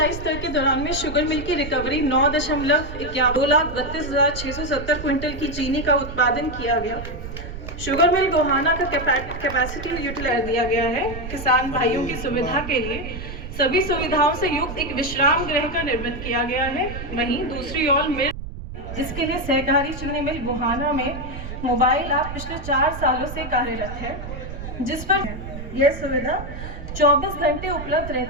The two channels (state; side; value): noise; right; rumble, 9 dB below the sound